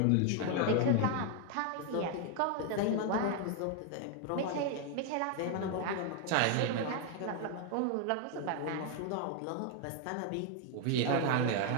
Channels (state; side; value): different; both; correlation 0.01